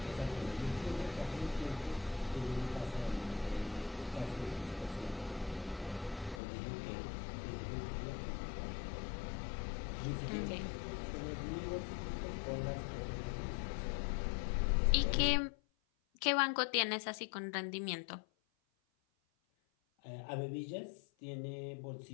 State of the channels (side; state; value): right; drops out; at 6.4 s